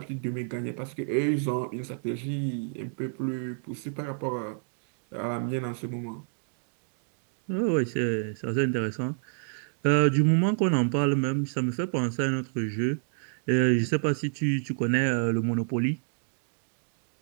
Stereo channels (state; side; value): silent; left; digital silence